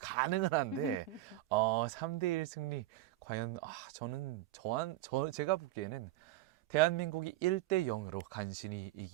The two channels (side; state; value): left; quieter; 15.6 dB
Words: 가능은 한데 3대1 승리 과연 제가 보기에는 대한민국이 1대 0으로 간신히